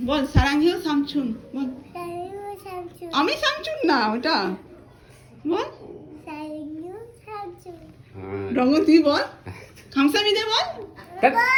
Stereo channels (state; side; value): identical; both; correlation 1.00